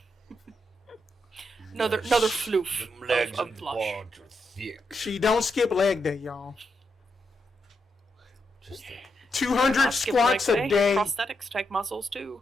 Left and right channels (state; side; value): normal; both; correlation 0.82